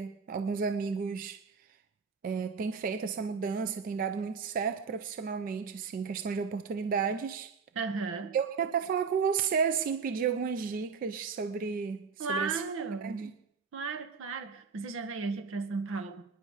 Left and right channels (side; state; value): left; quieter; 5.5 dB